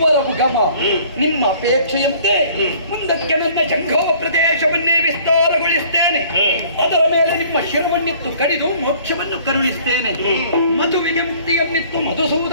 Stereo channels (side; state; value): both; inverted; correlation -0.53